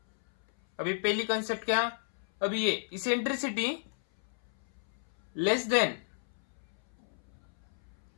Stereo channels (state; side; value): silent; right; 56 dB below the other